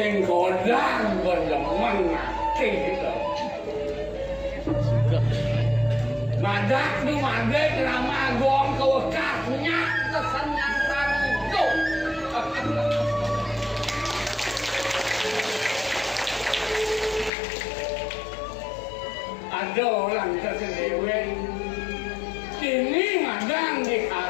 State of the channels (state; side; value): drops out; right; at 17.3 s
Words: godang berdemen akeh gitu. Madak nu madek rama gong kewekahnya kesenyangan itu. Ada orang tersendiri ini madang di